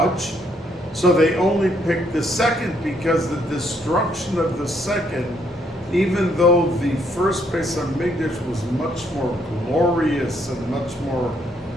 So they only picked the second, because the destruction of the second, even though the first Bais Hamikdash was much more glorious and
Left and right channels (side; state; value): both; normal; correlation 0.71